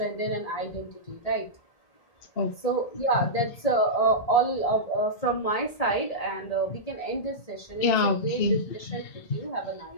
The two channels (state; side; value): late; right; 1.8 ms